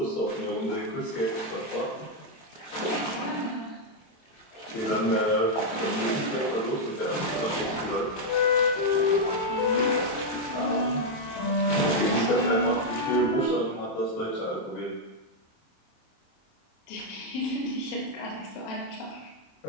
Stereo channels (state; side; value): late; right; 27 ms